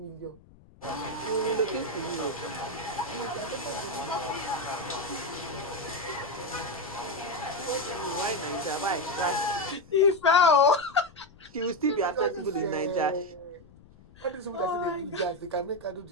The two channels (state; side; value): noise; left; rumble, 24 dB below the sound